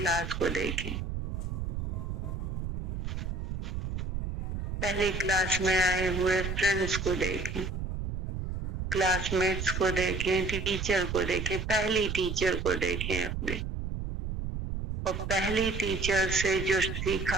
को, देखें पहली क्लास में आए हुए फ्रेंड्स को, देखें क्लासमेट्स को, देखें टीचर को, देखें पहली टीचर को, देखें अपने, और पहली टीचर से जो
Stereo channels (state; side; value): noise; right; rumble, 4 dB below the sound